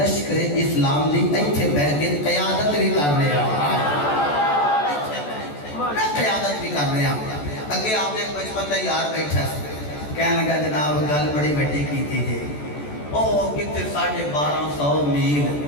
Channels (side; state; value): right; late; 14 ms